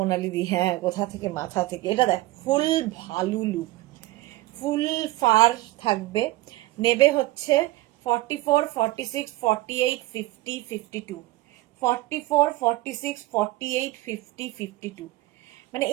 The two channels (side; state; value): left; quieter; 18.4 dB